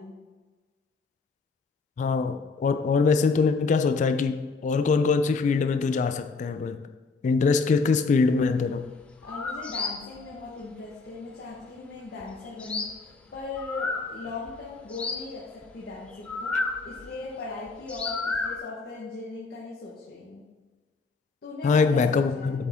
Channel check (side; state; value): right; quieter; 4.3 dB